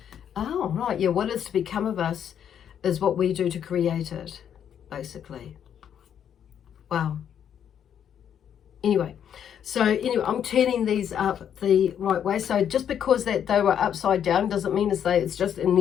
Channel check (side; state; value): right; quieter; 9.0 dB